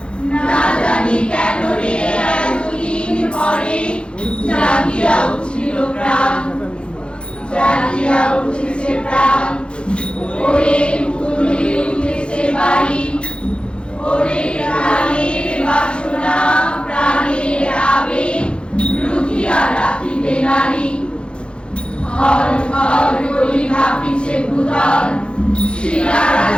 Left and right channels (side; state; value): right; late; 0.056 ms